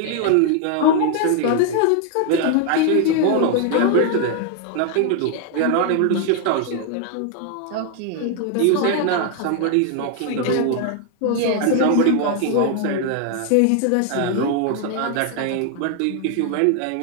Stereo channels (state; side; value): different; both; correlation 0.00